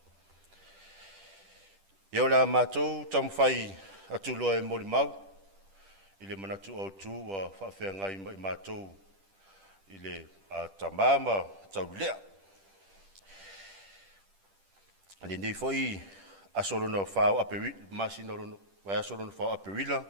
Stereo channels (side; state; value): left; late; 10 ms